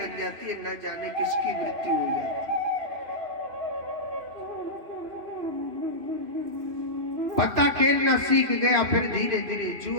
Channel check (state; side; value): late; left; 3.0 ms